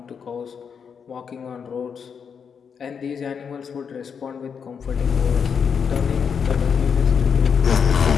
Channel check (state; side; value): quieter; right; 6.7 dB